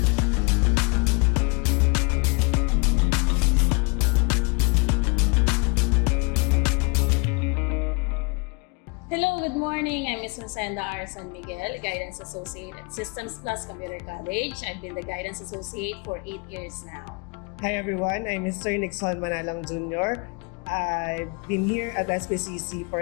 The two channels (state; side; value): quieter; right; 31.4 dB